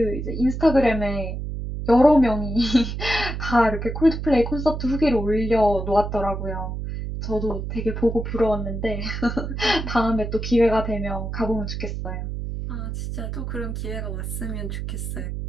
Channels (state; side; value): noise; right; hum, 5 dB below the sound